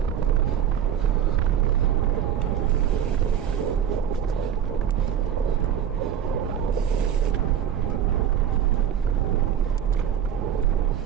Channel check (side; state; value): left; quieter; 9.3 dB